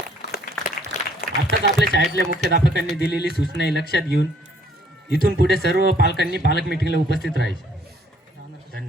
आताच आपल्या शाळेतल्या मुख्याध्यापकांनी दिलेली सूचना लक्षात घेऊन इथून पुढे सर्व पालकांनी पालक मिटिंगला उपस्थित राहायचे.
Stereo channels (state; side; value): normal; both; correlation 0.62